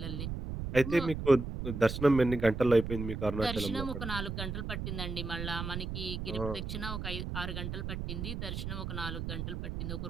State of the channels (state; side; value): noise; right; rumble, 5 dB below the sound